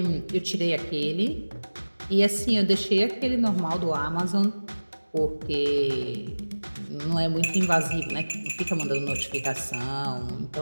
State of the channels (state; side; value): inverted; both; correlation -1.00